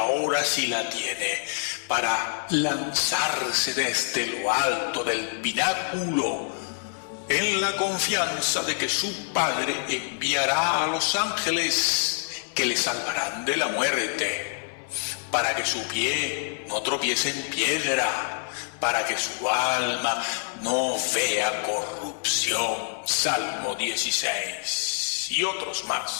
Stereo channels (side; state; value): right; silent; 58 dB below the other